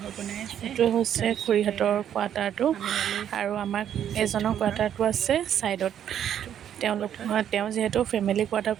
এইটোৱে হৈছে খুৰীহঁতৰ কোৱাৰ্টাৰটো আৰু আমাৰ এজনৰ কোৱাৰ্টাৰটো আছে ছাইডত। তেওঁ যিহেতু ফেমিলি কোৱাৰ্টাৰ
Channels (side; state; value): left; quieter; 9.8 dB